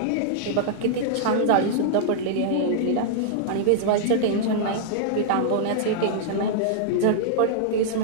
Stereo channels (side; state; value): both; different; correlation -0.01